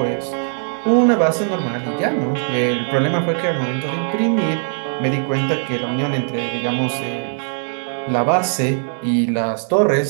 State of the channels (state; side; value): silent; left; 66 dB below the other